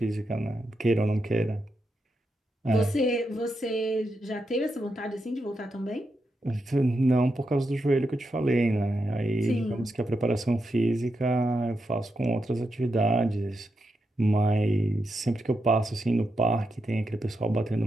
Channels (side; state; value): both; normal; correlation 0.85